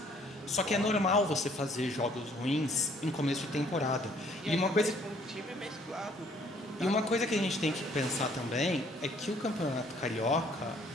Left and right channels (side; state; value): both; normal; correlation 0.61